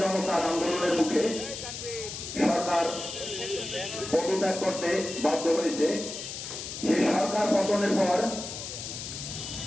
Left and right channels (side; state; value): left; noise; hiss, 8 dB below the sound